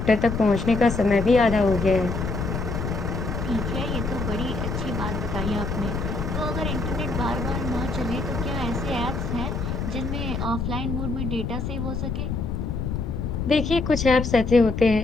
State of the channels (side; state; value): left; noise; rumble, 3 dB below the sound